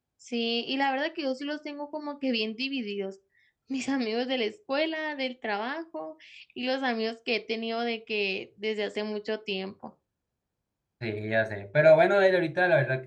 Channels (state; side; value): identical; both; correlation 1.00